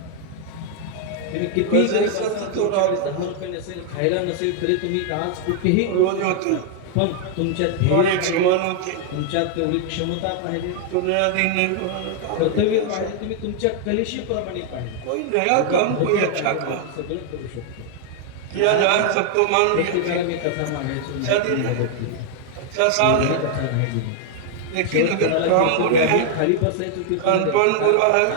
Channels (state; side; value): different; both; correlation 0.00